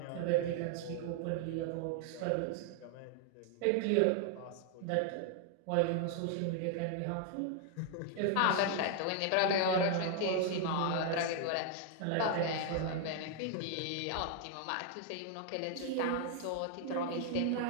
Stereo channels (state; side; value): different; both; correlation 0.00